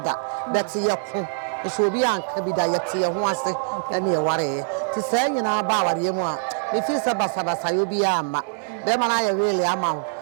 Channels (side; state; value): left; silent; 63 dB below the other